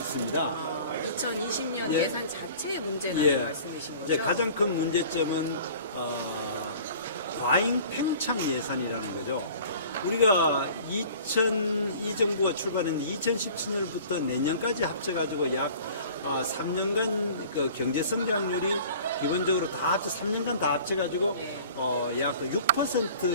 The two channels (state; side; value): inverted; both; correlation -0.46